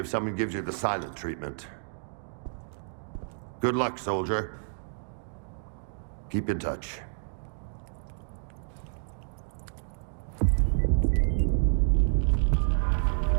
someone gives you the silent treatment. Good luck, soldier. Keep in touch.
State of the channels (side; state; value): left; silent; digital silence